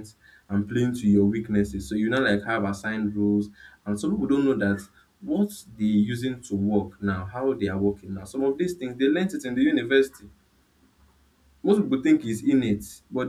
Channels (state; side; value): identical; both; correlation 1.00